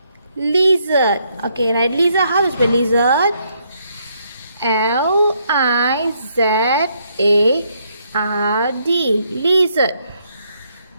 Lizard. Okay, right. Lizard. How to spell lizard? L-I-Z-A-R-D. Lizard.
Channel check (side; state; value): both; inverted; correlation -0.73